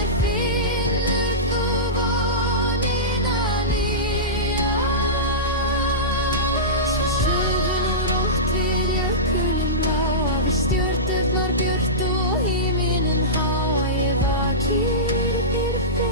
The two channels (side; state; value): both; normal; correlation -0.17